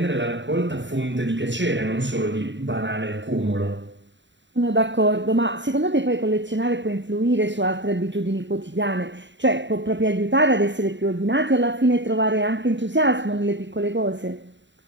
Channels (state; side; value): late; left; 0.53 ms